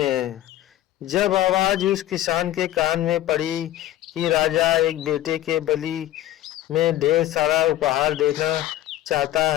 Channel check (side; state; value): right; quieter; 13.9 dB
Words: जब आवाज उस किसान के कान में पड़ी कि राजा एक बेटे के बलि में ढेर सारा उपहार देना चाहता